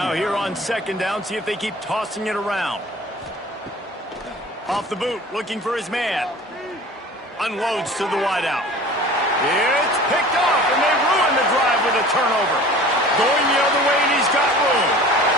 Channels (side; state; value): both; normal; correlation 0.43